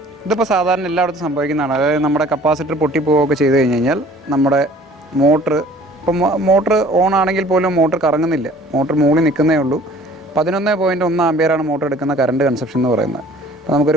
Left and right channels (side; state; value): both; normal; correlation 0.51